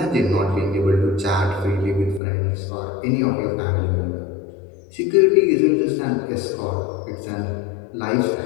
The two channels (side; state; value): right; drops out; at 2.2 s